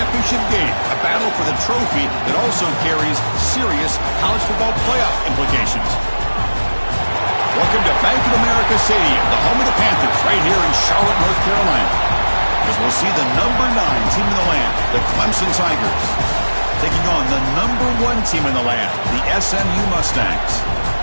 game, a battle for the trophy that also carries serious college football playoff implications. Welcome to Bank of America Stadium, the home of the Panthers, right here in Charlotte, North Carolina. As we'll see the number 9 team in the land, the Clemson Tigers, taking on the number 1 team in the land, the SMU Mustangs.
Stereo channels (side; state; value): both; inverted; correlation -1.00